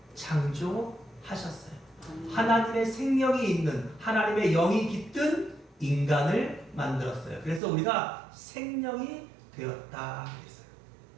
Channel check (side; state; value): left; drops out; at 7.6 s